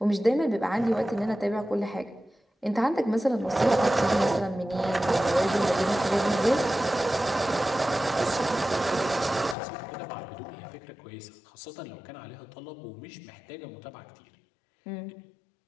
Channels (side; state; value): right; drops out; at 9.6 s